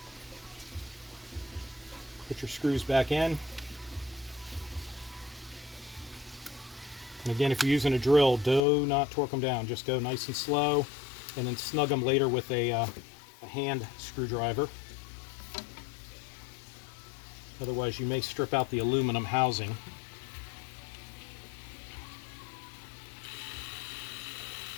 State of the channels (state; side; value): drops out; right; at 8.6 s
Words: Put your screws back in. And again, if you're using a drill, do not torque them down. Just go nice and slow, and then snug them later with a hand screwdriver. Otherwise, you may strip out the aluminum housing.